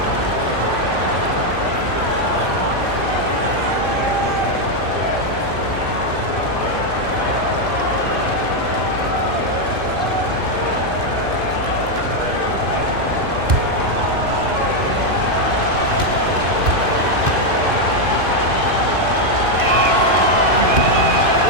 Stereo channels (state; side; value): late; left; 2.5 ms